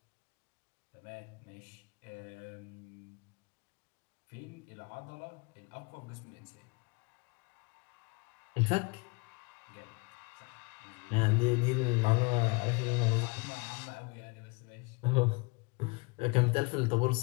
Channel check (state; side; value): quieter; right; 28.9 dB